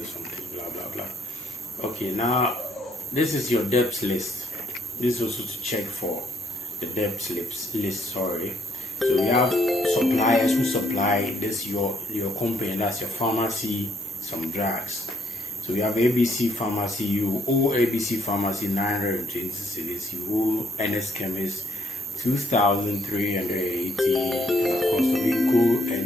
blah blah blah. Okay, now this is your debts list. This is also to check for the debt list. Sorry. So we have suppliers who supply this your company, that's your pharmacy, some drugs. So we have ABC Pharmacy. You owe ABC Pharmacy 920 cedis. You owe NS Chemist 2,380. And of course, Rico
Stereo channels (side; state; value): both; normal; correlation 0.69